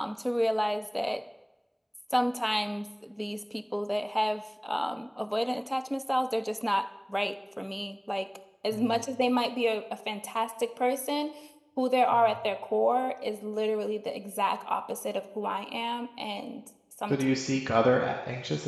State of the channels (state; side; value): identical; both; correlation 1.00